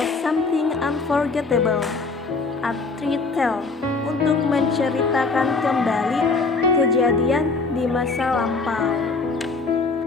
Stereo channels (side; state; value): right; quieter; 4.1 dB